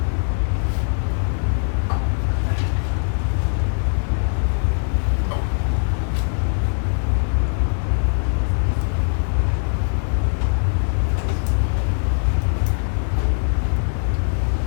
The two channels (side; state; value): right; silent; 65 dB below the other